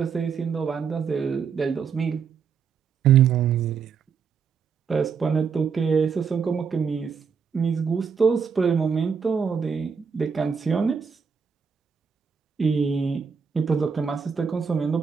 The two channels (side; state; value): left; quieter; 6.2 dB